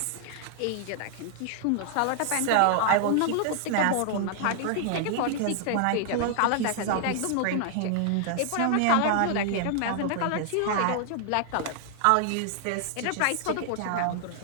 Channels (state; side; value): different; both; correlation 0.00